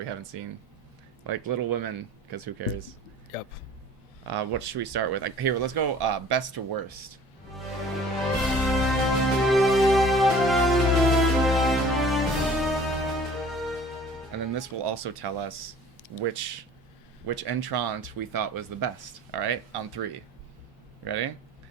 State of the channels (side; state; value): both; normal; correlation 0.47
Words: haven't seen, like Little Women, because who cares? Yep. What should we start with? Like, here, let's go best to worst. And then this will also tell us which entrant we thought was the best. All right, on three. Ready?